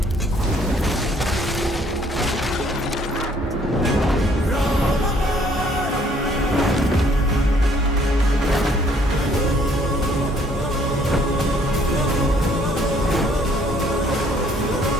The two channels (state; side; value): normal; both; correlation 0.62